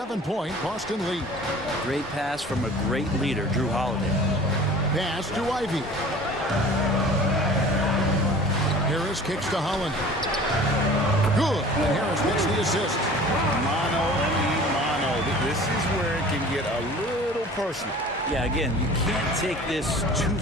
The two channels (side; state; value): both; normal; correlation 0.44